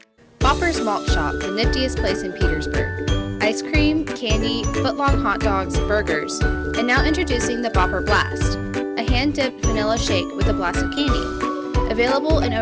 Bopper's Malt Shop, the niftiest place in Petersburg. Ice cream, candy, foot-long hot dogs, burgers, and now introducing the Bopper Blast, a hand-dipped vanilla shake with a blast of candy. Available in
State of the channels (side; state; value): both; identical; correlation 1.00